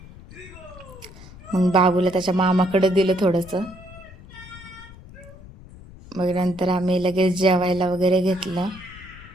मग बाबूला त्याच्या मामाकडे दिलं थोडंसं. मग नंतर आम्ही लगेच जेवायला वगैरे घेतलं.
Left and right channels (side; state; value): left; noise; rumble, 19 dB below the sound